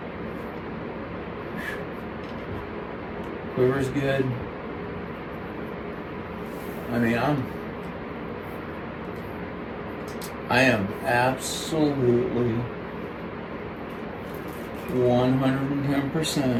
Quiver's good. I mean, I am absolutely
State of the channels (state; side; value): identical; both; correlation 1.00